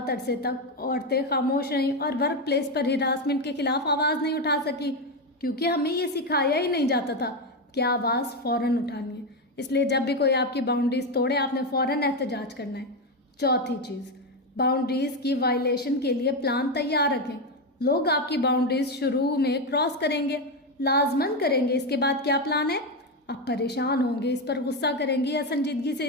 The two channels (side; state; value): both; normal; correlation 0.10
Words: عرصے تک عورتیں خاموش رہیں اور ورک پلیس پر ہراسمنٹ کے خلاف آواز نہیں اٹھا سکی، کیونکہ ہمیں یہ سکھایا ہی نہیں جاتا تھا کہ آواز فوراً اٹھانی ہے۔ اس لیے جب بھی کوئی آپ کی باؤنڈریز توڑے آپ نے فوراً احتجاج کرنا ہے۔ چوتھی چیز، باؤنڈریز کی وائلیشن کے لیے پلان تیار رکھیں۔ لوگ آپ کی باؤنڈریز شروع میں کراس کریں گے، لازماً کریں گے، اس کے بعد کیا پلان ہے؟ آپ پریشان ہوں گے، اس پر غصہ کریں گے یا سنجیدگی سے